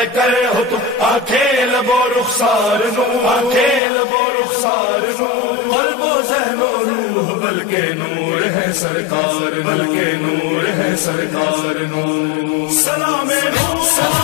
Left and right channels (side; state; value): right; drops out; at 3.8 s